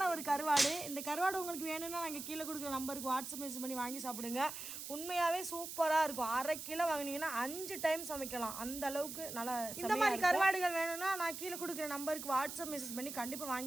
ஒரு கருவாடு. இந்த கருவாடு உங்களுக்கு வேணும்னா நாங்கள் கீழே கொடுக்குற நம்பருக்கு வாட்ஸ்அப் மெசேஜ் பண்ணி வாங்கி சாப்பிடுங்க. உண்மையாகவே சூப்பராக இருக்கும். 1/2 கிலோ வாங்கினீங்கன்னா 5 டைம் சமைக்கலாம். அந்த அளவுக்கு நல்லா. இந்த மாதிரி கருவாடுகள் வேணும்னா நான் கீழே கொடுக்குற நம்பருக்கு வாட்ஸ்அப் மெசேஜ் பண்ணி கண்டிப்பாக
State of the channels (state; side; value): noise; right; hiss, 8 dB below the sound